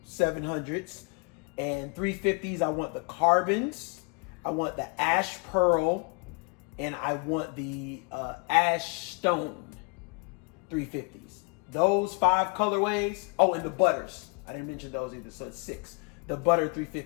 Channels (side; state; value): right; quieter; 33.5 dB